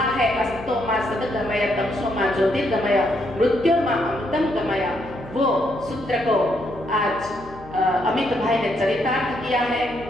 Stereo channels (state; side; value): noise; left; hum, 19 dB below the sound